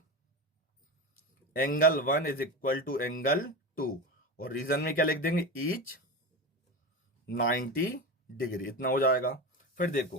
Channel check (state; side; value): normal; both; correlation 0.23